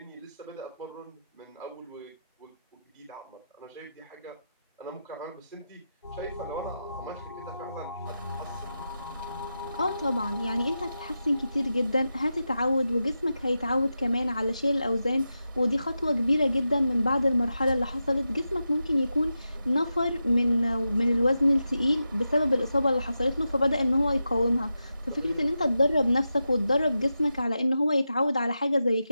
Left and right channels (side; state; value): both; inverted; correlation -0.90